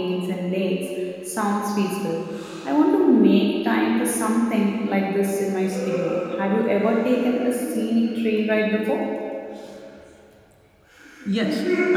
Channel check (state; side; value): identical; both; correlation 1.00